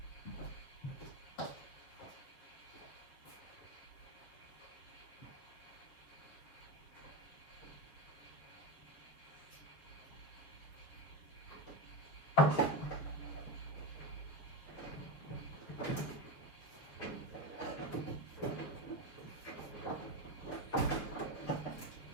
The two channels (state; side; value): late; right; 7.2 ms